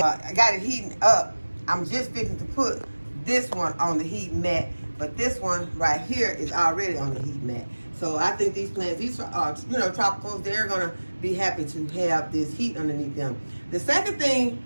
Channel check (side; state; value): both; inverted; correlation -1.00